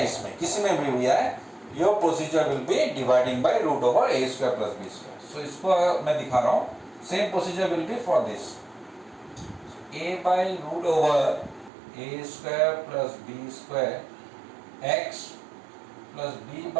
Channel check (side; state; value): left; drops out; at 11.7 s